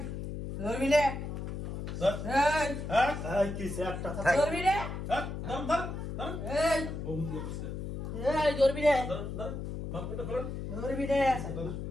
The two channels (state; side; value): noise; left; hum, 6 dB below the sound